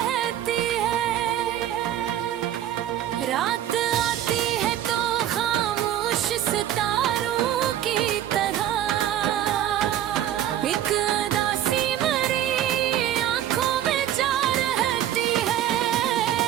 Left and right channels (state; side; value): quieter; left; 11.5 dB